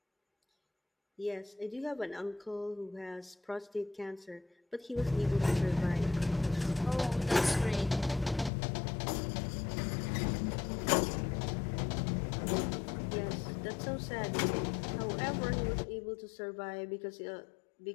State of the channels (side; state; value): right; drops out; at 8.5 s